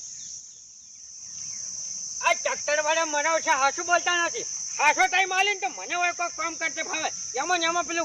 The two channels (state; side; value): identical; both; correlation 1.00